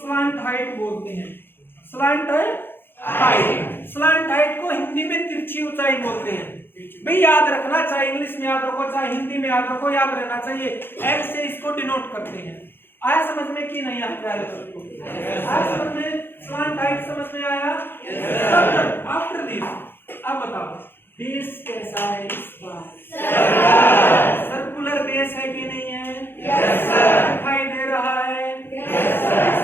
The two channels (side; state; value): right; late; 0.10 ms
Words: हाइट बोलते हैं। स्लांट हाइट, स्लांट हाइट को हिंदी में तिरछी ऊंचाई बोलते हैं। भाई याद रखना, चाहे इंग्लिश में याद रखो चाहे हिंदी में याद रखो, याद रहना चाहिए। एल से इसको डिनोट करते हैं। आया समझ में कि नहीं आया प्यारे दोस्तों? आया समझ में? स्लांट हाइट समझ में आया? आफ्टर दिस अब बताओ बेस कैसा है इसका? सर्कुलर बेस है कि नहीं है? दिखाई दे रहा है?